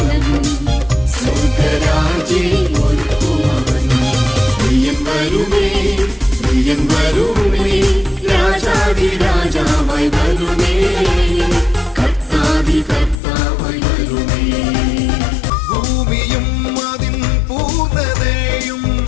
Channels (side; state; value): right; drops out; at 13.2 s